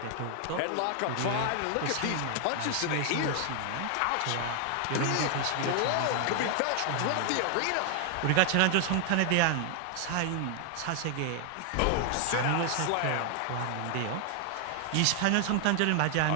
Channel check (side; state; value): both; different; correlation 0.00